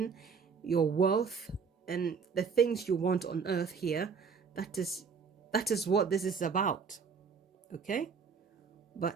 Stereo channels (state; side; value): quieter; left; 5.8 dB